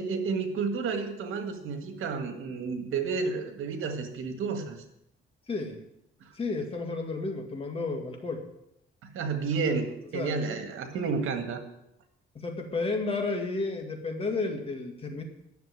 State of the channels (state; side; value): normal; both; correlation 0.35